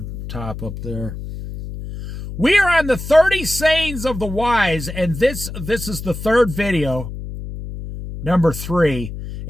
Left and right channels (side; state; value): left; noise; hum, 9 dB below the sound